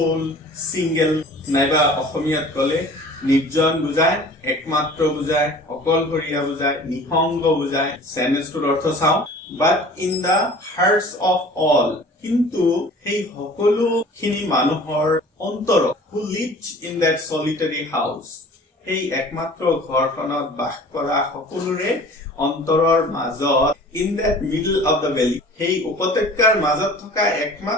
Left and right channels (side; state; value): both; normal; correlation 0.45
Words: single, naiba অসমীয়াত কলে নিৰ্জন বুজায়, একমাত্ৰ বুজায়, অকলশৰীয়া বুজায়, নিসংগ বুজায়। সেন্টেন্সটোৰ অৰ্থ চাওঁ। But in the hearts of all, কিন্তু সেই সকলোখিনি মানুহৰ অন্তৰত, who lived in that solitary house, সেই একমাত্ৰ ঘৰখনত বাস কৰা সকলোৰে অন্তৰৰ মাজত, in that middle of the valley, সেই উপত্যকাৰ মাজত থকা